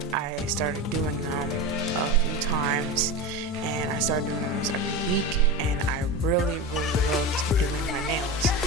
I started doing them a few times, and I started doing them every week, and I really loved doing my nails.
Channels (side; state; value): both; normal; correlation 0.23